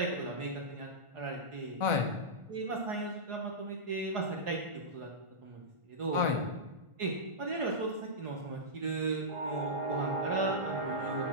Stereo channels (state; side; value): late; left; 1.5 ms